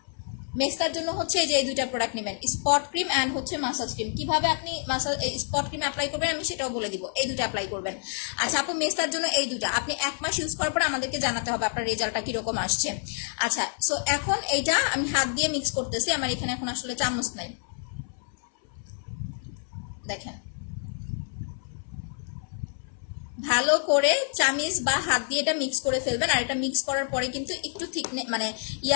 মেস্তার জন্য হচ্ছে এই যে এই 2টা প্রোডাক্ট নেবেন, স্পট ক্রিম অ্যান্ড হচ্ছে মাসাজ ক্রিম। কিভাবে আপনি স্পট ক্রিম অ্যাপ্লাই করবেন আমি সেটাও বলে দিব, এই 2টা অ্যাপ্লাই করবেন। আচ্ছা আপু মেস্তার জন্য এই 2টা আপনি 1 মাস ইউজ করার পরে আমাদেরকে জানাতে হবে আপনার রেজাল্টটা কিরকম আসছে। আচ্ছা সো এখন এইটা আমি হাত দিয়ে মিক্স করতেছি, আমার এখানে এখন আসলে চামচ নাই। দেখেন ভালো করে চামিচ বা হাত দিয়ে এটা মিক্স করে ফেলবেন। আর এটা মিক্স করার পরে কিন্তু একটু ঠিক মানে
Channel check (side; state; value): right; silent; 60 dB below the other